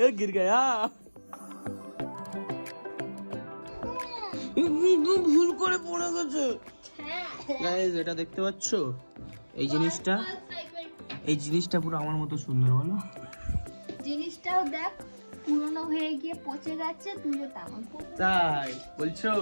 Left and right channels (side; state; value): both; inverted; correlation -1.00